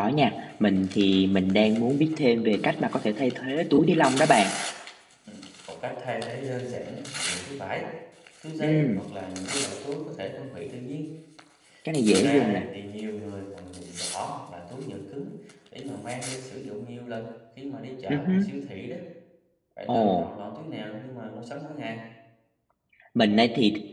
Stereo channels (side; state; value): both; identical; correlation 1.00